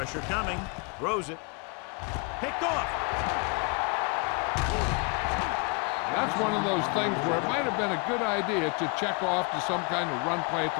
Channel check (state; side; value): quieter; right; 32.7 dB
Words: coming. Throws it. Picked off. That's one of those things where it might have been a good idea to check off to some kind of run play at